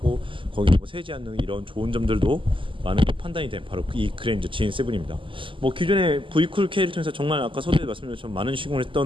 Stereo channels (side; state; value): left; late; 0.25 ms